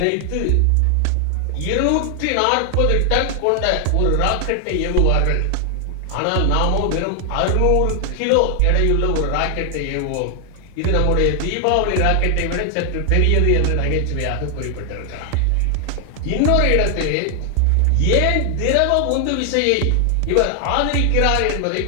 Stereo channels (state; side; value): different; both; correlation 0.00